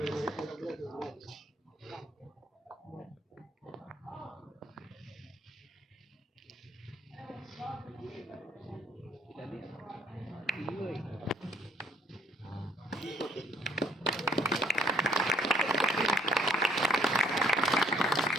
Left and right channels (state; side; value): normal; both; correlation 0.63